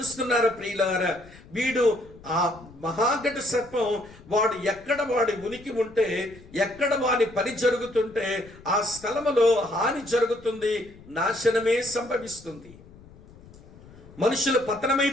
ప్రియులారా, వీడు ఆ మహాఘట సర్పం వాడు ఎక్కడ వాడి ఉనికి ఉంటే, ఎక్కడ వాడి పని జరుగుతుంటే ఆ స్థలములో హాని జరుగుతుంది, నాశనమే సంభవిస్తుంది, మనుషులు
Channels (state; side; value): noise; left; rumble, 21 dB below the sound